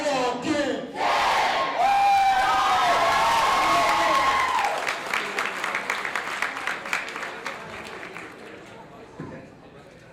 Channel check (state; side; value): identical; both; correlation 1.00